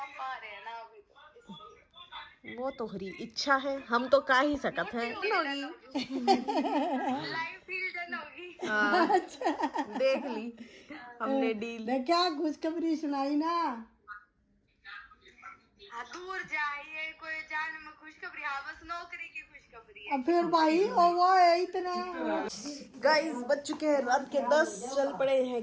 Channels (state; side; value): identical; both; correlation 1.00